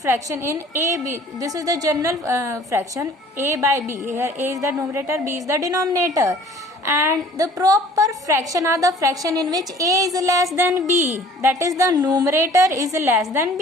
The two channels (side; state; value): both; normal; correlation 0.51